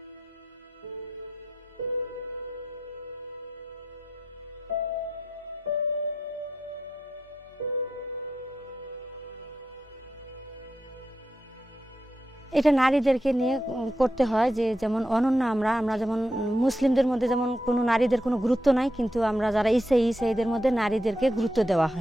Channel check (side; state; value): both; normal; correlation 0.85